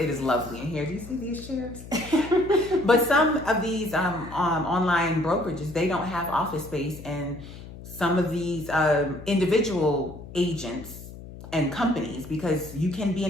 is lovely in here. Do you see these chairs? But some of these online brokerages, they don't have office space, and some of these individual agents and companies, because you can be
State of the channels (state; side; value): noise; left; hum, 15 dB below the sound